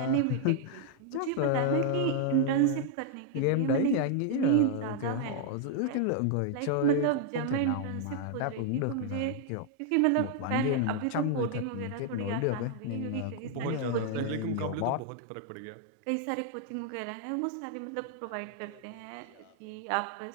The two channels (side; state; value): both; different; correlation 0.00